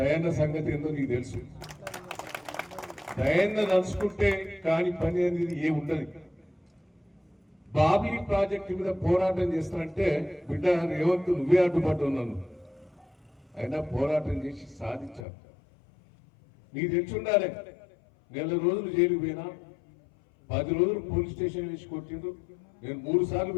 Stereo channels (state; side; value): drops out; right; at 15.2 s